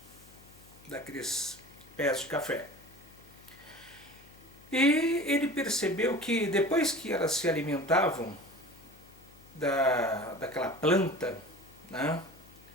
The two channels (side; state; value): left; noise; hum, 24 dB below the sound